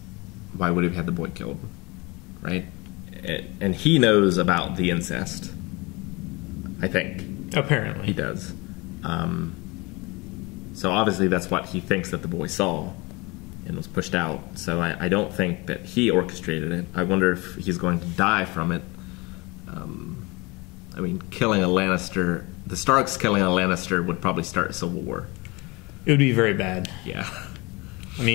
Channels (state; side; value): quieter; right; 25.5 dB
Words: why would he have had the boy killed? Right? And he knows about the incest. I think. Apparently. He does. So obviously that's what he thinks that the boy saw and was pushed out. So I don't think that he orchestrated it. I wonder if he's going to die from it. I mean, killing a Lannister... the Starks killing a Lannister would probably start a civil war. It would be very bad. Yeah. I